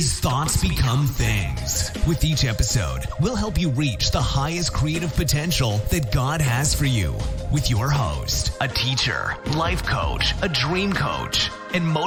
Thoughts Become Things. With each episode, we'll help you reach the highest creative potential that God has for you. With your host, a teacher, life coach, a dream coach, and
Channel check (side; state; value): both; identical; correlation 1.00